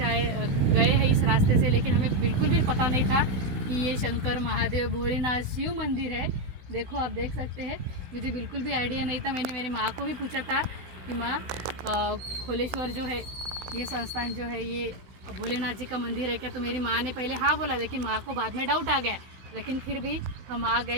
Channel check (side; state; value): left; late; 16 ms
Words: हैं इस रास्ते से, लेकिन हमें बिल्कुल भी पता नहीं था कि ये शंकर महादेव भोलेनाथ शिव मंदिर है। देखो, आप देख सकते हैं, मुझे बिल्कुल भी आइडिया नहीं था। मैंने मेरी माँ को भी पूछा था कि माँ, खोलेश्वर जो है, ये संस्थान जो है, ये भोलेनाथ जी का मंदिर है क्या? तो मेरी माँ ने पहले हाँ बोला, लेकिन माँ को बाद में डाउट आ गया। लेकिन फिर भी हम आ